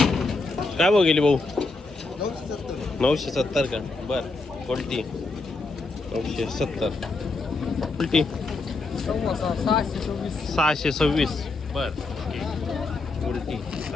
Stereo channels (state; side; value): quieter; right; 3.6 dB